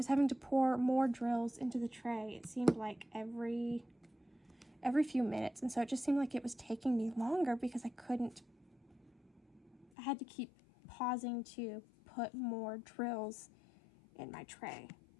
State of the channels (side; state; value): right; drops out; at 9.9 s